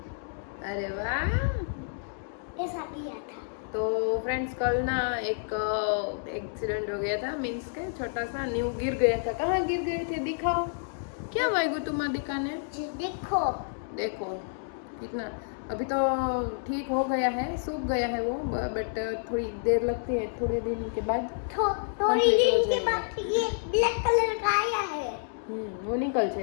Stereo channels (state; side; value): silent; right; digital silence